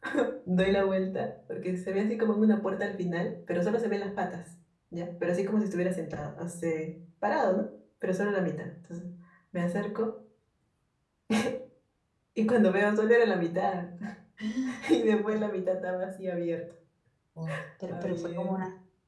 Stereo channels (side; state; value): both; identical; correlation 1.00